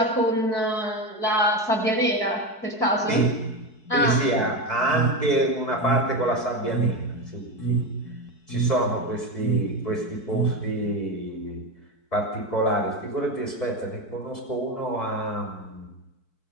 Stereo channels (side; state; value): right; late; 4.6 ms